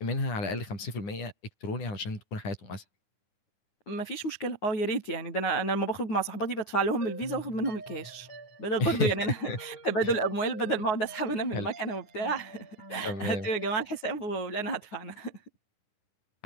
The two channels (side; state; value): right; late; 9.4 ms